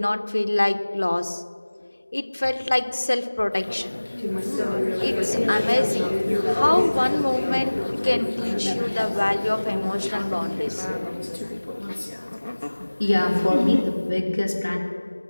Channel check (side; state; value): both; inverted; correlation -1.00